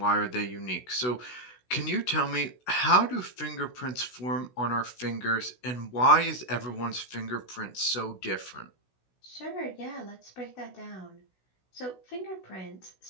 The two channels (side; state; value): right; late; 16 ms